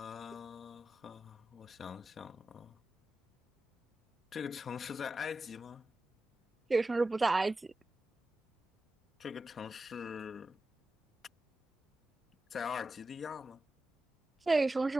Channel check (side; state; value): both; normal; correlation 0.93